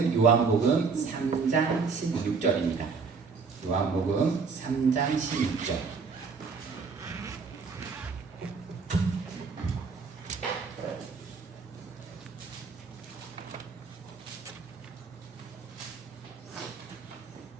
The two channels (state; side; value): quieter; left; 5.0 dB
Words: 요한복음 3장 16절입니다. 요한복음 3장 16절